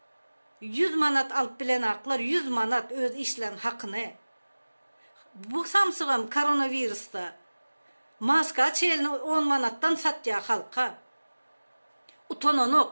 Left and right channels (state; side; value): inverted; both; correlation -1.00